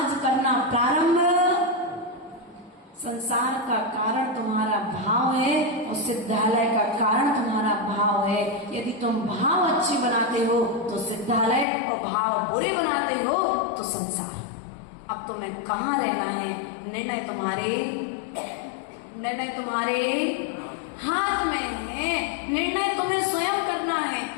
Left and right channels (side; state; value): right; drops out; at 11.7 s